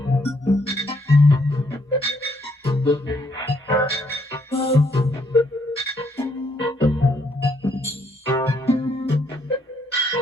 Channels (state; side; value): normal; both; correlation 0.71